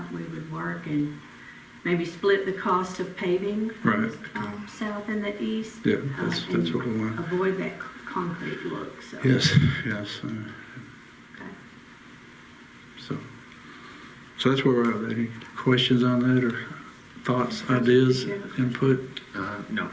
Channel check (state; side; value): identical; both; correlation 1.00